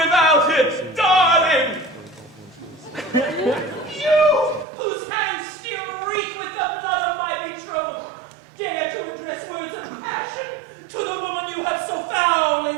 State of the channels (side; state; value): left; drops out; at 4.7 s